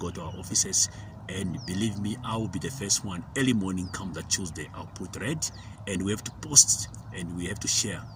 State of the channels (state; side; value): identical; both; correlation 1.00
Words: to our offices. And believe me, I will be the first one early morning come that Tuesday. I'll put red, and we have to post and we have to share